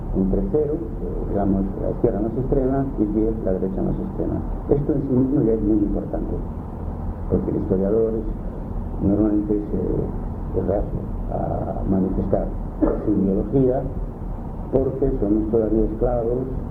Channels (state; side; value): identical; both; correlation 1.00